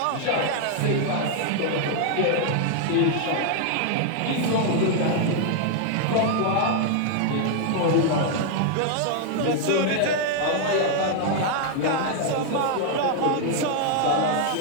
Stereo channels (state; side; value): different; both; correlation 0.00